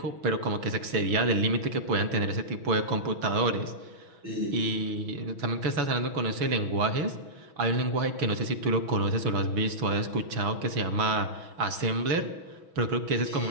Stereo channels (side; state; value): left; late; 6.2 ms